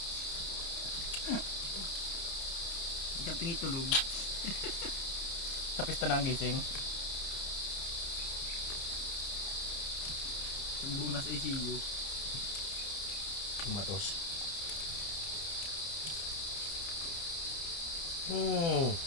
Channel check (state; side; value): late; right; 30 ms